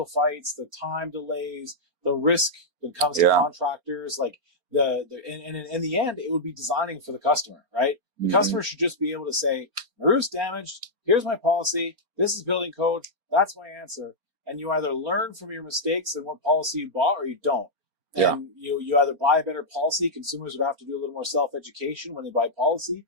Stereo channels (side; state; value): left; late; 4.3 ms